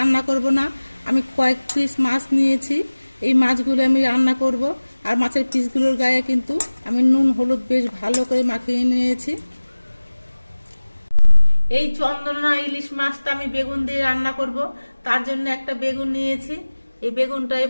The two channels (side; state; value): both; inverted; correlation -1.00